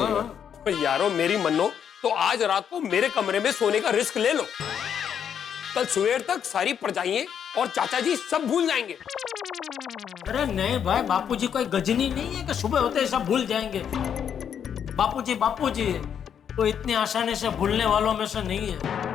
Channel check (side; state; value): right; quieter; 8.3 dB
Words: ओ यारो, मेरी मन्नो, तो आज रात को मेरे कमरे में सोने का रिस्क ले लो। कल सवेर तक सारी परजाइयां और चाचा जी सब भूल जाएंगे। अरे नहीं भाई, बापूजी कोई गजनी नहीं है कि सुबह होते ही सब भूल जाएंगे। बापूजी बापूजी है, तो इतनी आसानी से भूलने वालों में से नहीं है।